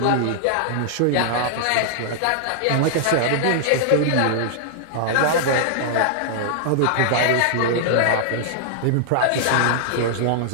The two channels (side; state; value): both; different; correlation -0.01